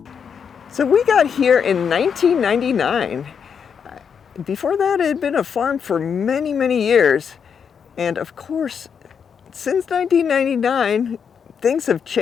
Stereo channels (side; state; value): right; quieter; 6.9 dB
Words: So we got here in 1999. Before that, it had been a farm for many, many years. And of course, since 1999, things have